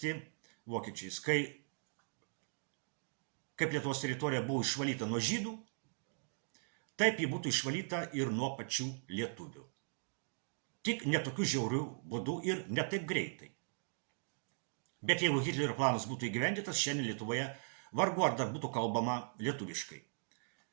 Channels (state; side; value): silent; left; digital silence